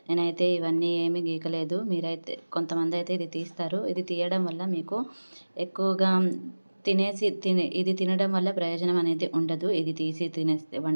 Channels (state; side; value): inverted; both; correlation -1.00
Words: నేనైతే ఇవన్నీ ఏమీ గీకలేదు. మీరైతే కొంతమంది అయితే ఇది తీస్తారు. ఇది తీయడం వల్ల మీకు ఎక్కువగా ఇది తినడం వల్ల ప్రయోజనం అనేది ఉండదు. ఇది తీసి